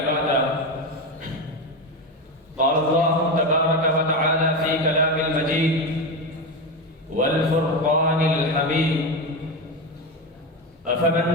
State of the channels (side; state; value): both; normal; correlation 0.17